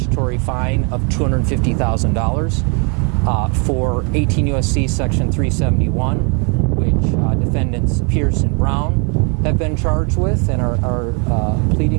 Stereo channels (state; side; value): quieter; left; 35.6 dB